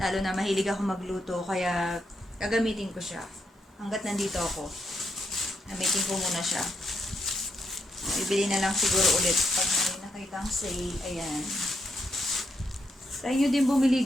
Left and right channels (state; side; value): normal; both; correlation 0.80